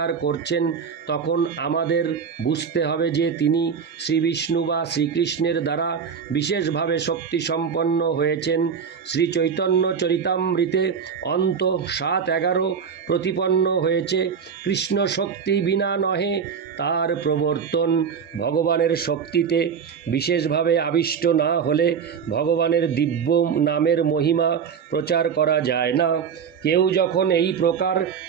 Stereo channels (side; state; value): left; quieter; 6.8 dB